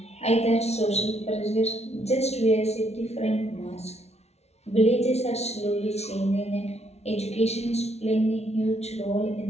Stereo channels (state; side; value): late; right; 0.31 ms